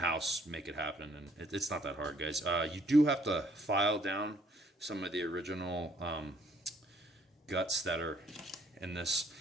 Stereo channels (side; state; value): both; normal; correlation 0.63